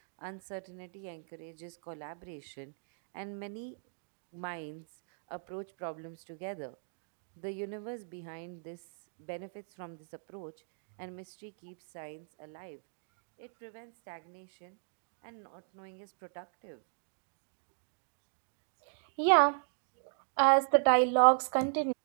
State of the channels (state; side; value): silent; left; digital silence